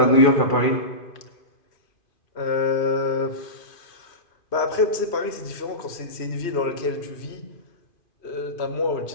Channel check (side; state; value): right; late; 2.5 ms